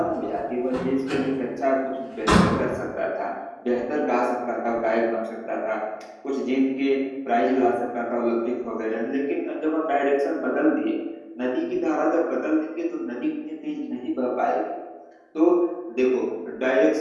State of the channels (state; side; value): identical; both; correlation 1.00